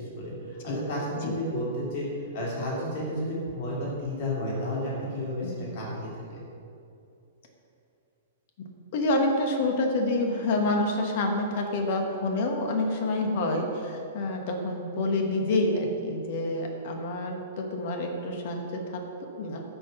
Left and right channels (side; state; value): both; inverted; correlation -0.35